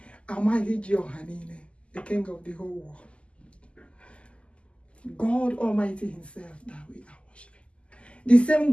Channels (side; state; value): right; late; 0.055 ms